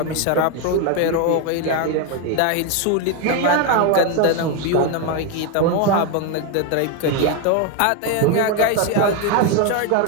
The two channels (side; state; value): both; different; correlation 0.02